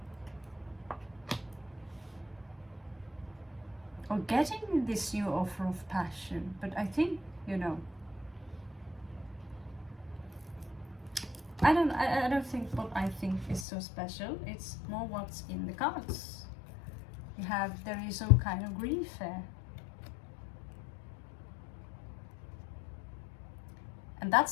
Or getting this new offer of passion. But I think, you know, I don't think what I think is so special. It's more what's in the cards. There is some kind of grief there. And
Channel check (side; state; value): right; drops out; at 13.7 s